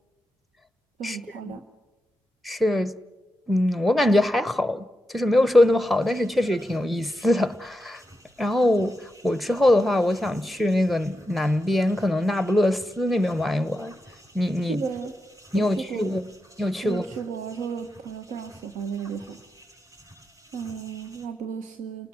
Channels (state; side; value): normal; both; correlation 0.88